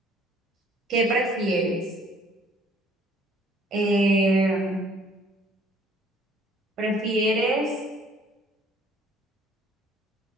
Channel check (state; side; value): normal; both; correlation 0.58